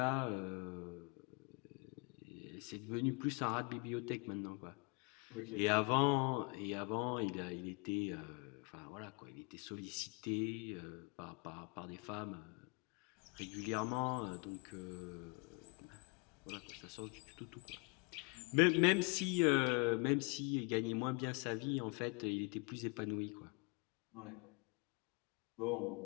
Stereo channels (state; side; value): quieter; right; 31.2 dB